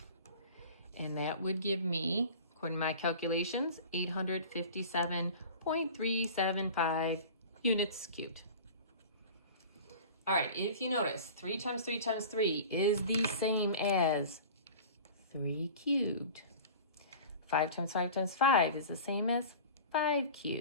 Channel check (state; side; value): inverted; both; correlation -0.39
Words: And that would give me, according to my calculations, 857.375 units cubed. All right, if you notice, 3 times 3 times 3 is the same as 3 cubed. 5 times 5 times 5 is the same as 5